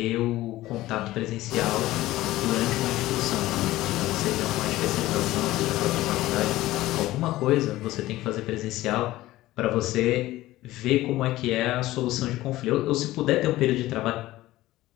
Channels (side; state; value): right; quieter; 16.6 dB